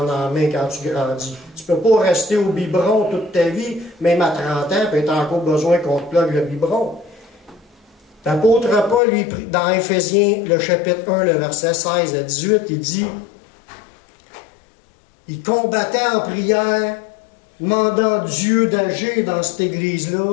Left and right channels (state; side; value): drops out; right; at 9.0 s